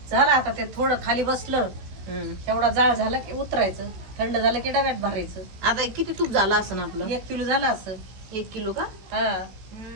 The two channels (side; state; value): left; late; 16 ms